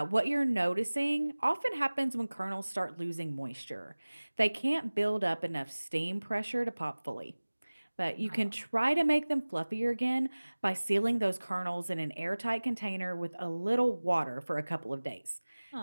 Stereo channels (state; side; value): inverted; both; correlation -1.00